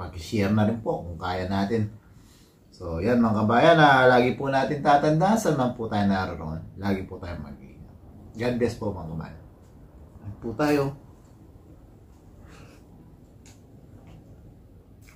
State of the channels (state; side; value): identical; both; correlation 1.00